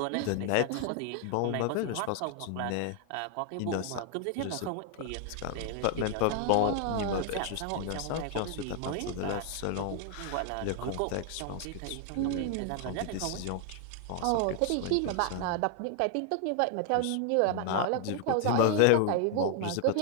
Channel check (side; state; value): both; different; correlation 0.00